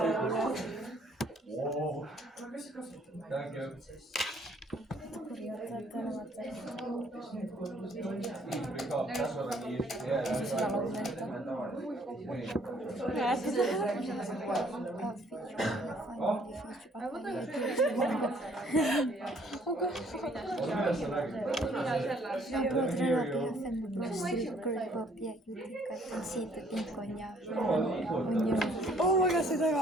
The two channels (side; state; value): both; normal; correlation 0.62